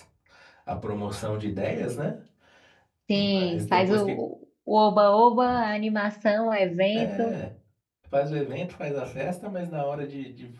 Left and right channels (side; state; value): both; identical; correlation 1.00